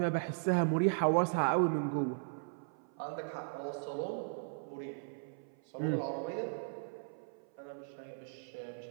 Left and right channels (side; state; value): left; silent; 53 dB below the other